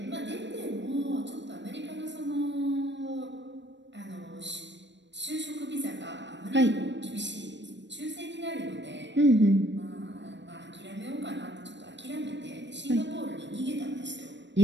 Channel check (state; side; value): late; left; 0.53 ms